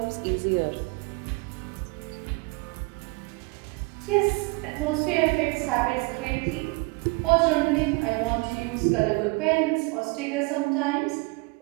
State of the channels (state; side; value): quieter; left; 27.5 dB